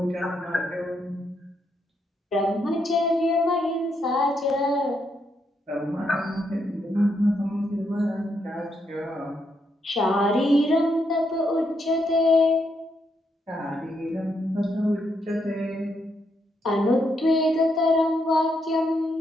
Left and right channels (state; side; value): normal; both; correlation 0.78